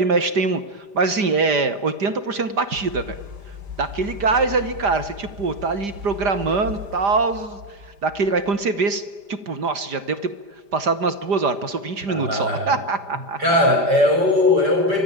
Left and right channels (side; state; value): left; late; 5.0 ms